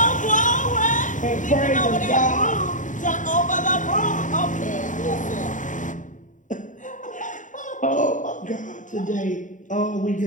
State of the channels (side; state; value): right; late; 0.37 ms